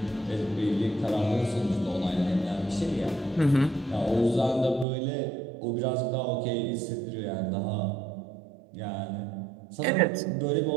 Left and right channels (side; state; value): left; drops out; at 4.9 s